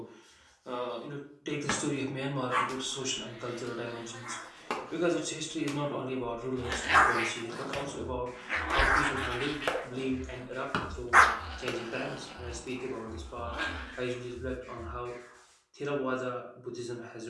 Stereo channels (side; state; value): both; identical; correlation 1.00